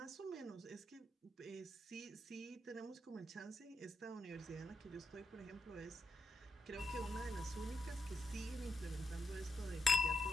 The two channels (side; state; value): both; normal; correlation 0.83